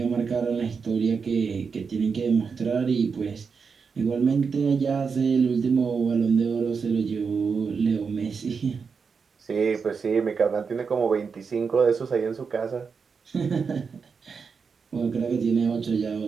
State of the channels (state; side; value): quieter; left; 5.6 dB